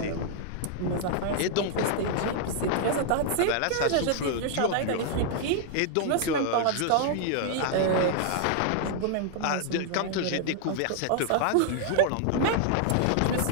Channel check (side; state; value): both; different; correlation 0.00